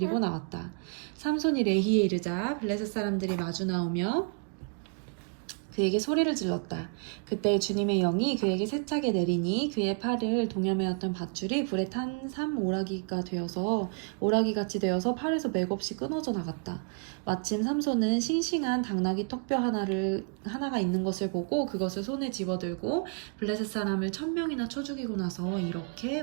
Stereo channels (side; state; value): left; quieter; 38.7 dB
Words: 나왔다. 삼손이 레히에 이르자 블레셋 사람들이 마주 나오며 그에게 소리를 질렀다. 그때 주님의 영이 그에게 세차게 내리니 그의 팔을 동여매었던 밧줄이 불에 탄 오라기같이 되어서 팔에서 맥없이 끊어져 나갔다. 마침 삼손은 싱싱한 당나귀 턱뼈 하나가 있는 것을 보고 그것을 손에 집어들고 블레셋 사람을 1,000명이나 쳐 죽이고 나서 이렇게